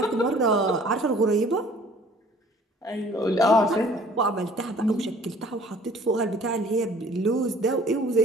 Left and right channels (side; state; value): both; normal; correlation 0.53